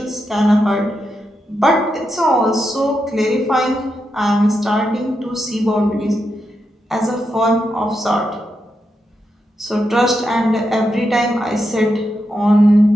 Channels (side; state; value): both; normal; correlation 0.85